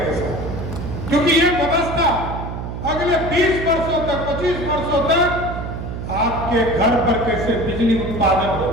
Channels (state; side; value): noise; right; hum, 6 dB below the sound